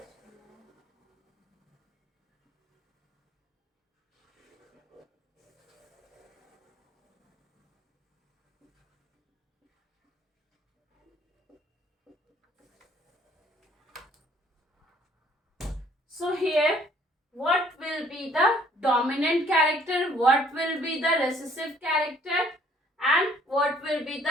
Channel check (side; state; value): both; normal; correlation 0.60